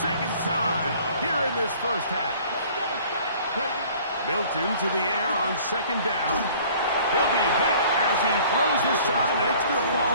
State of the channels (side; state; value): both; inverted; correlation -0.52